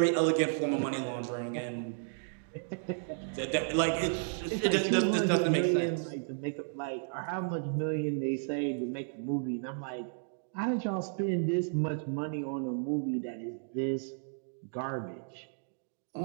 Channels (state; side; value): silent; left; digital silence